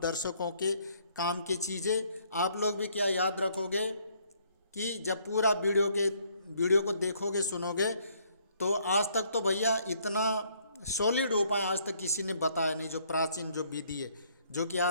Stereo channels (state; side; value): inverted; both; correlation -0.66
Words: दर्शकों के काम की चीज़ें आप लोग भी क्या याद रखोगे कि जब पूरा वीडियो को देखोगे सुनोगे, तो आज तक तो भैया इतना सॉलिड उपाय आज तक किसी ने बताया नहीं, जो प्राचीन जो विधि है, जो कि